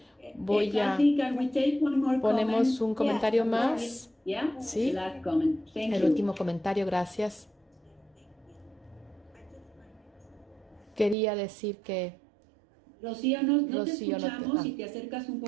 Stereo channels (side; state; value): left; drops out; at 11.2 s